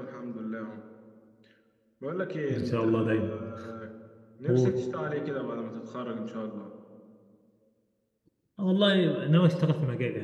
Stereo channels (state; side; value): identical; both; correlation 1.00